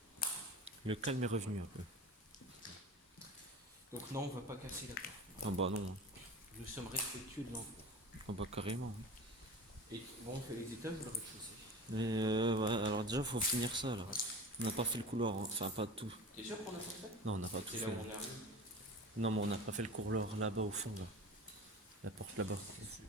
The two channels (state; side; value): normal; both; correlation 0.35